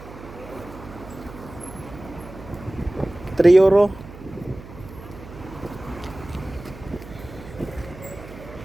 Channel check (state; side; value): noise; right; hum, 16 dB below the sound